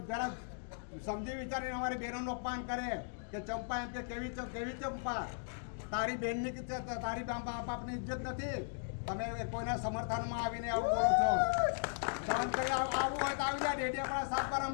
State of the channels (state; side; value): silent; right; digital silence